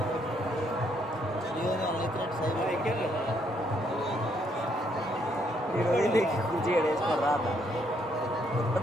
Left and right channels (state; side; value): normal; both; correlation 0.72